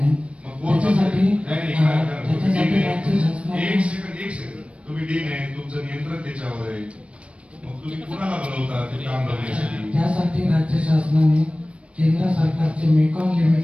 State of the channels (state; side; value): late; left; 0.061 ms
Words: एक सेकंड तुम्ही डी नाही, तुमचं नियंत्रण त्याच्यावर आहे. मग तुम्ही कुणाला बोलवता ते काम करण्यासाठी? त्यासाठी राज्य शासनाने केंद्र सरकारचे मेकॉन